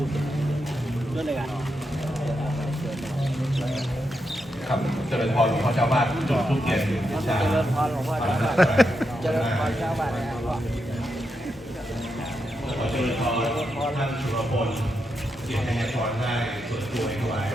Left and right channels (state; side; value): normal; both; correlation 0.84